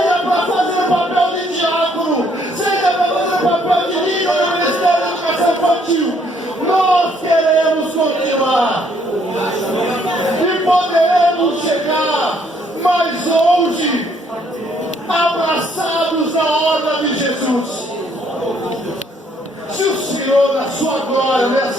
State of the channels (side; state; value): both; normal; correlation 0.67